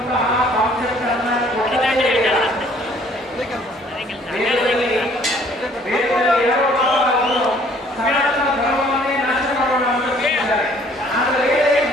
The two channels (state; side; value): normal; both; correlation 0.58